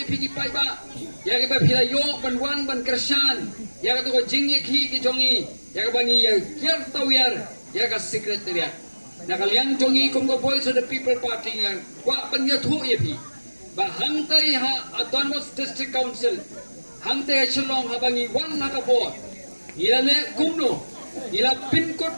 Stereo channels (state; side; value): inverted; both; correlation -1.00